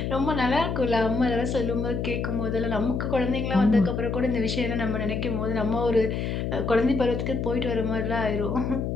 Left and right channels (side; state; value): left; noise; hum, 2 dB below the sound